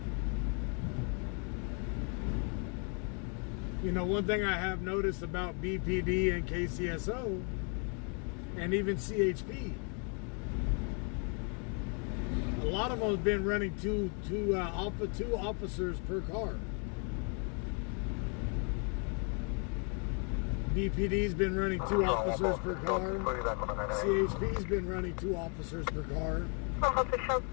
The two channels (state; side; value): quieter; right; 38.1 dB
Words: You know, one thing I have noticed about BPD and KCSO and even CHP, a lot of them have been running two officers per car. BPD's been running 2 officers per car. CHP's been running 2 officers per car.